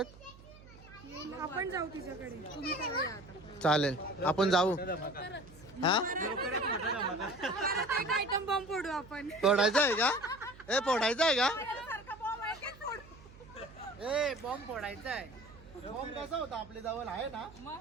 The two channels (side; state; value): right; noise; hum, 20 dB below the sound